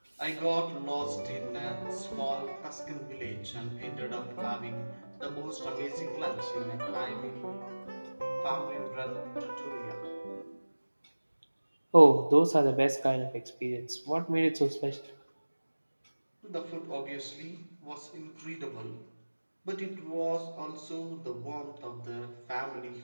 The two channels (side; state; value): both; inverted; correlation -1.00